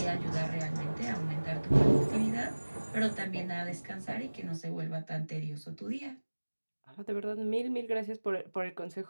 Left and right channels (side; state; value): both; inverted; correlation -1.00